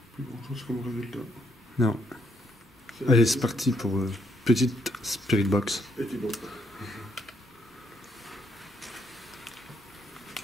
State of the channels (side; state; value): both; normal; correlation 0.73